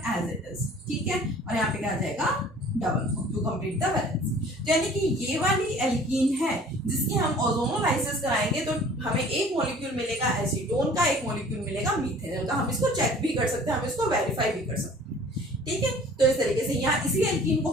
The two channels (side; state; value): both; normal; correlation 0.50